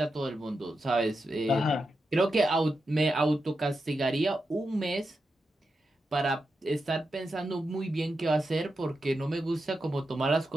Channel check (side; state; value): both; normal; correlation 0.88